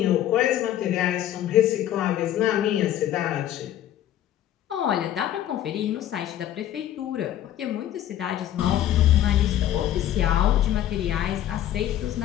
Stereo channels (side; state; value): right; quieter; 11.9 dB